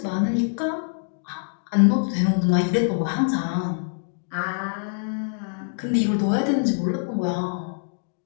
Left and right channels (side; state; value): right; silent; digital silence